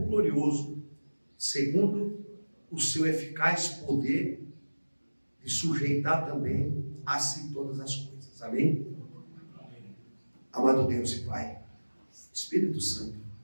glorioso, segundo o seu eficaz poder, de sujeitar também a si todas as coisas. Amém? Amado Deus e Pai, Espírito Santo,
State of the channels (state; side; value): inverted; both; correlation -1.00